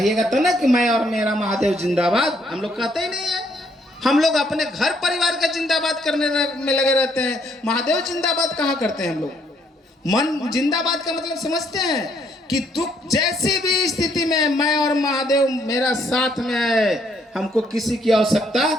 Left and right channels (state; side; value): normal; both; correlation 0.69